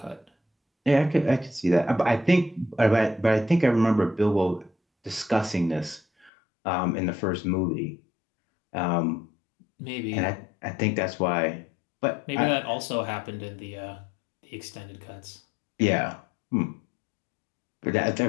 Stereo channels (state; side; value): drops out; right; at 6.3 s